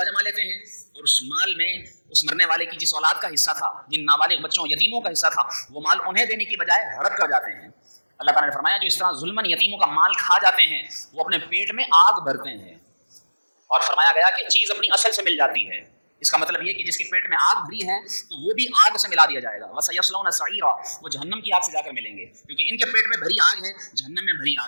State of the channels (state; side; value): inverted; both; correlation -1.00